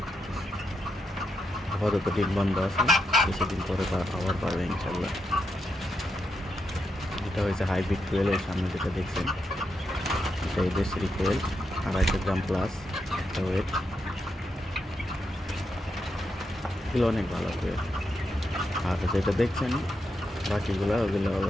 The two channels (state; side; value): normal; both; correlation 0.84